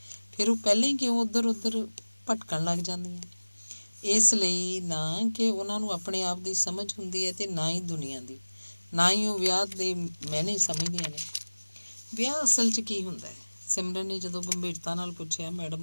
ਫਿਰ ਉਹ ਪਹਿਲਾਂ ਹੀ ਕਿਉਂ ਉੱਧਰ ਭਟਕਣ ਲੱਗ ਜਾਂਦੀਆਂ? ਇਸ ਲਈ ਨਾ ਕਿ ਉਹਨਾਂ ਨੂੰ ਆਪਣੇ ਆਪ ਦੀ ਸਮਝ ਹੁੰਦੀ ਹੈ ਅਤੇ ਨਾ ਹੀ ਦੁਨੀਆ ਦੀ, ਨਾ ਹੀ ਉਹ ਵਿਆਹ ਦੇ ਮਾਇਨੇ ਸਮਝਦੀਆਂ ਨੇ। ਵਿਆਹ ਅਸਲ 'ਚ ਕੀ ਹੁੰਦਾ ਹੈ? ਸਿਮਰਨ ਨੇ ਜਦੋਂ ਗੰਭੀਰਤਾ ਨਾਲ ਪੁੱਛਿਆ।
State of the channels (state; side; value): inverted; both; correlation -1.00